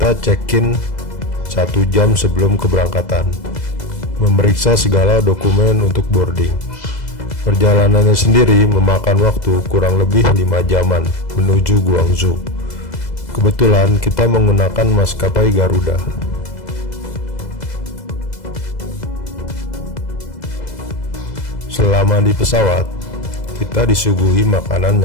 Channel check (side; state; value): right; late; 2.0 ms